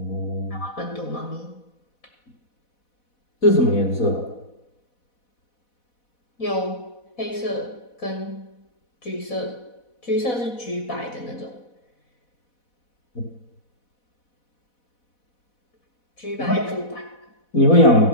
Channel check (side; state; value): right; late; 4.1 ms